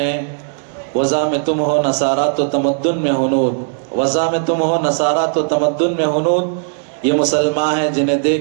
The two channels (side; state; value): left; silent; digital silence